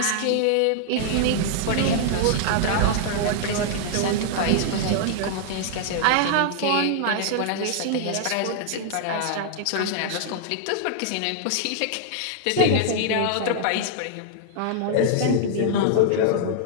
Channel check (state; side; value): different; both; correlation -0.01